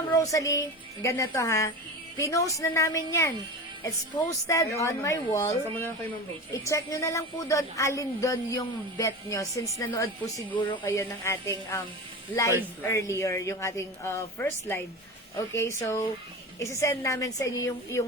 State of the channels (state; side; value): normal; both; correlation 0.28